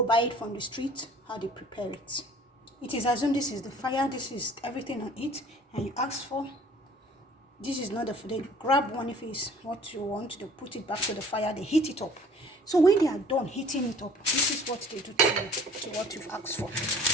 buy it from the street, how they prepare it. It is assumed this is the fire, this is everything on it, and you ask for. This is not the food. They grab one if it's what you want, they put it back to the fire, they heat it up. So when they are done heating it up, this is what they do to you, to what you've asked for.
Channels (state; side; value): normal; both; correlation 0.51